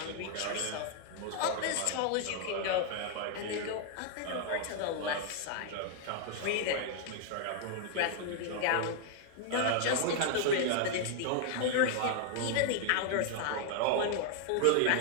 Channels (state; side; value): different; both; correlation 0.00